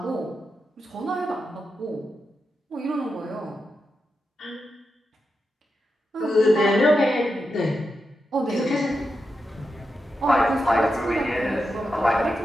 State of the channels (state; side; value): normal; both; correlation 0.88